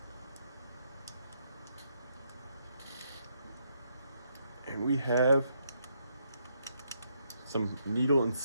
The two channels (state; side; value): inverted; both; correlation -0.76